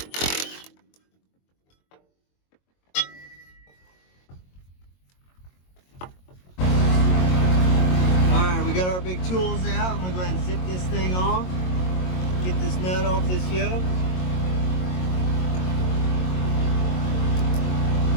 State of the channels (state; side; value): late; right; 22 ms